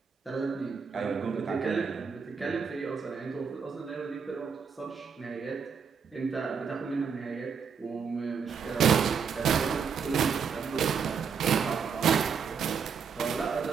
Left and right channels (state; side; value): quieter; left; 6.3 dB